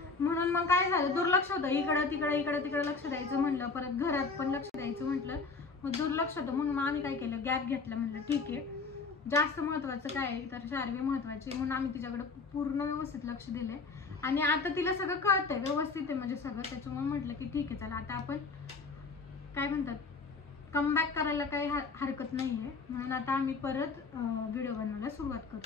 म्हणून मग काय झालं, दुर्लक्ष होतं. इकडं तिकडं लक्ष द्यायचं म्हणलं, परत घरात पण लक्ष द्यायचं म्हटलं, मग दुर्लक्ष होतं. म्हणून मग आम्ही काय केलं, गॅप घेतला. म्हणलं ठीक आहे, जास्त महत्वाचं काय आहे तर शार्वी महत्वाची, म्हणून आम्ही तिच्याकडे पूर्ण व्यवस्थित लक्ष दिलंय. आणि आता तिला सगळं कळतंय, व्यवस्थित आहे म्हणजे सगळं. त्याच्यामुळे म्हटलं की ठीक आहे चला आता आपण काय म्हणतात कमबॅक करायला काही हरकत नाहीये, म्हणून आता आम्ही परत व्हिडिओ बनवायला सुरुवात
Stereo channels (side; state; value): right; quieter; 4.4 dB